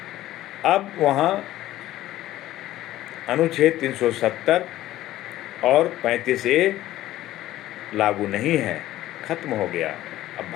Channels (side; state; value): right; quieter; 14.7 dB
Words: अब वहाँ अनुच्छेद 370 और 35A लागू नहीं है, खत्म हो गया। अब